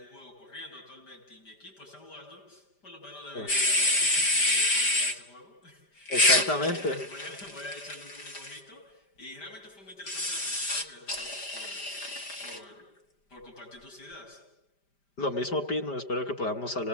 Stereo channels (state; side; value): late; right; 5.0 ms